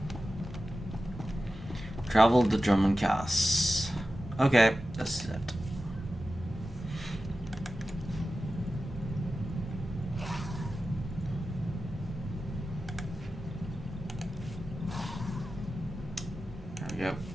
Travel to Drummond Cass. Okay, that's it. There we go.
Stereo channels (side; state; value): both; normal; correlation 0.93